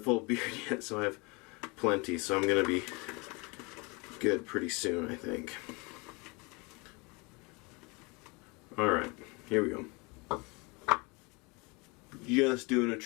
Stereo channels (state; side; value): quieter; right; 28.3 dB